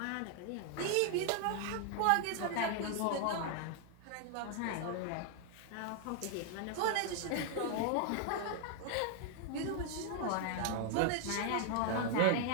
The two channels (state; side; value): different; both; correlation 0.00